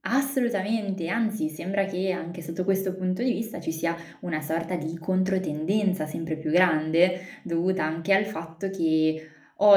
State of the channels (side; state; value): both; identical; correlation 1.00